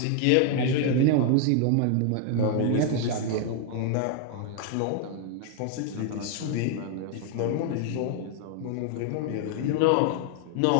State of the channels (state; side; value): different; both; correlation 0.00